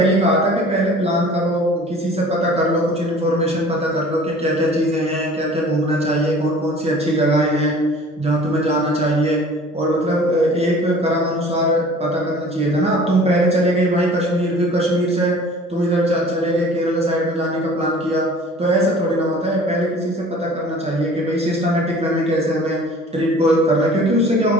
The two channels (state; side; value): normal; both; correlation 0.47